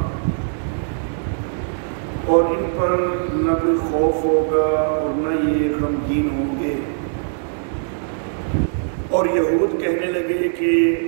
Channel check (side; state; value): left; silent; digital silence